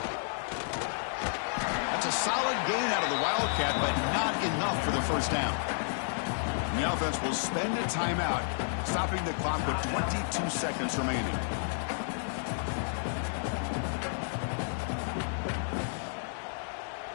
That's a solid gain out of the Wildcat, but not enough for the first down. And the offense will spend a timeout, stopping the clock with 22 seconds remaining.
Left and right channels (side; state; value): right; silent; digital silence